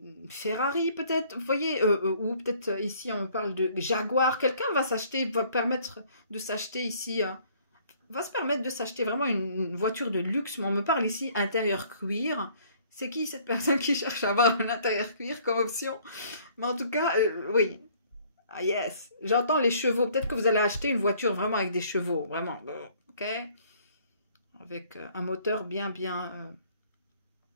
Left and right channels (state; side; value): inverted; both; correlation -0.59